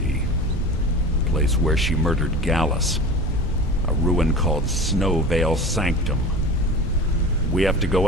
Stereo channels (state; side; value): normal; both; correlation 0.34